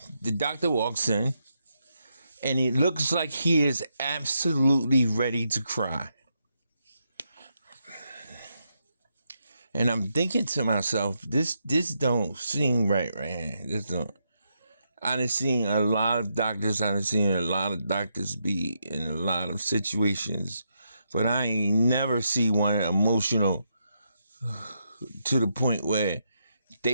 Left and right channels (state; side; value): inverted; both; correlation -0.81